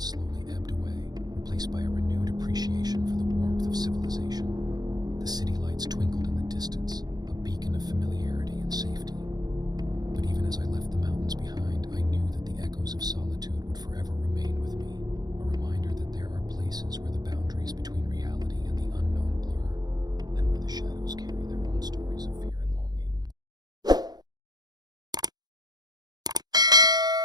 ebbed away, replaced by a renewed appreciation for the warmth of civilization. The city lights twinkled in the distance, a beacon of familiarity and safety. But even as I left the mountains behind, I knew that the echoes of solitude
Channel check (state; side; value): late; left; 0.19 ms